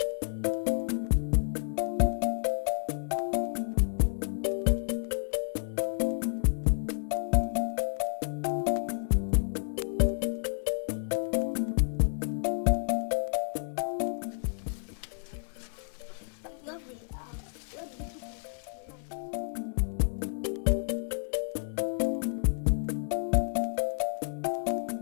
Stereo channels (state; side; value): silent; right; digital silence